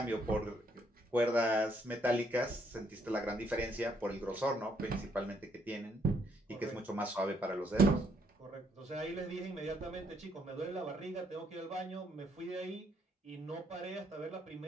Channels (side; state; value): both; normal; correlation 0.71